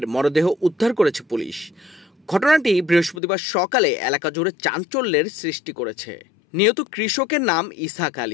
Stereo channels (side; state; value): right; drops out; at 3.2 s